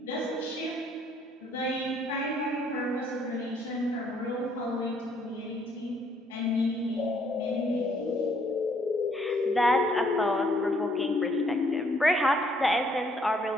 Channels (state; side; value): normal; both; correlation 0.66